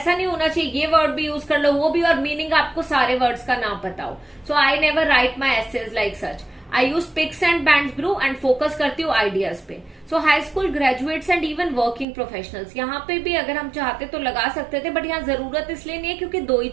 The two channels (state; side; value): drops out; left; at 12.1 s